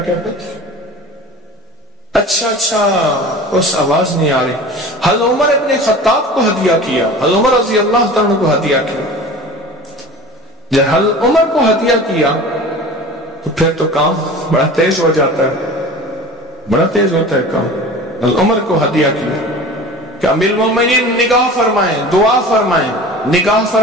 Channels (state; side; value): normal; both; correlation 0.38